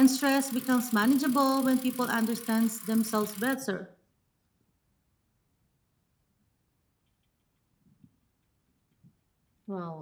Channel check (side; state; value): both; identical; correlation 1.00